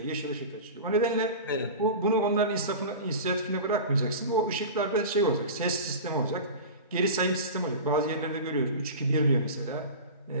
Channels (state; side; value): inverted; both; correlation -0.31